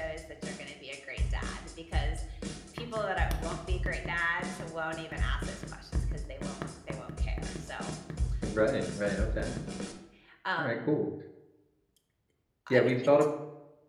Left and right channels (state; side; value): identical; both; correlation 1.00